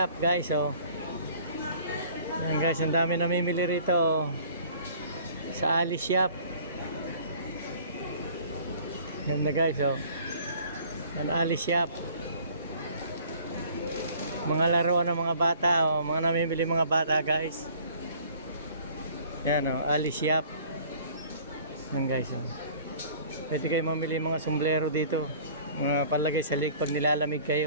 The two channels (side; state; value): both; inverted; correlation -0.51